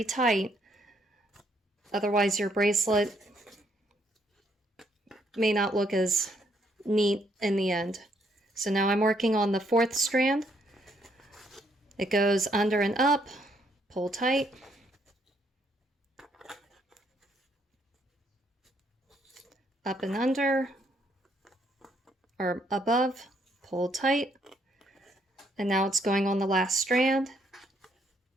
tight, otherwise your bracelet may not look as neat in the end. So now I'm working on the 4th strand. It goes under and up, pull tight, up and under, or above, pull tight, and now it's going on the last strand,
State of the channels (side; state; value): both; normal; correlation 0.71